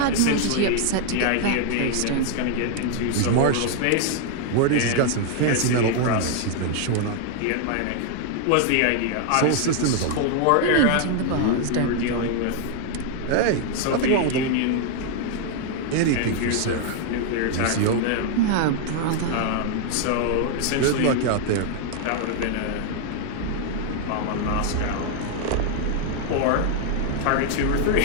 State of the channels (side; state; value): both; different; correlation 0.00